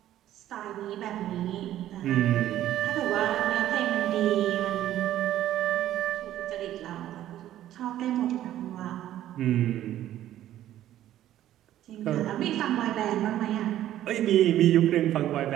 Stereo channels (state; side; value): quieter; left; 12.7 dB